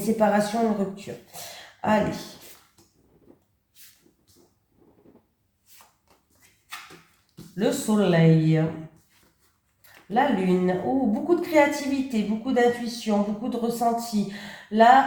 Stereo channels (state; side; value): identical; both; correlation 1.00